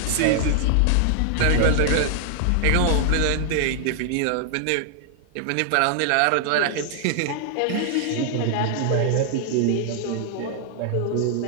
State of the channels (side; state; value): both; different; correlation 0.00